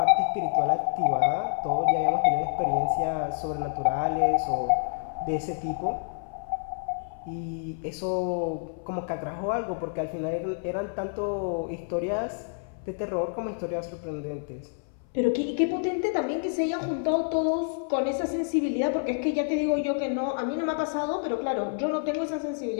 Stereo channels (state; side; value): silent; right; 59 dB below the other